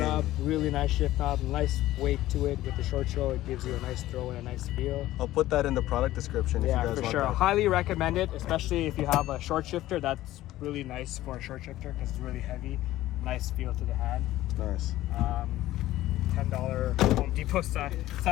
really nice shift knob, nice weight to it with the short show. It gives you a nice throw and a nice feel. I'll put that in the product description if you Yeah, guys for want sure. that. Highly recommend it, especially if you have a short shifter. That's really nice for a short shifter because it's really heavy. Nice feel to the hand. Nice. $10 Home Depot side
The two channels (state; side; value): quieter; right; 15.3 dB